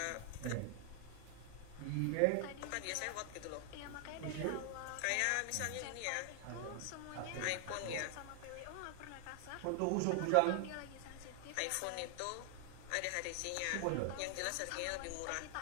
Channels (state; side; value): different; both; correlation 0.00